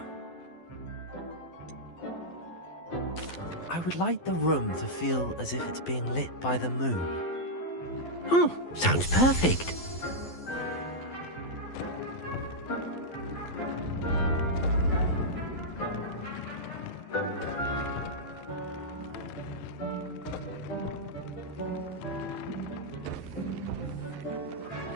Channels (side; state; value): right; late; 12 ms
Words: I would like the room to feel as if it's being lit by the moon. Oh, sounds perfect.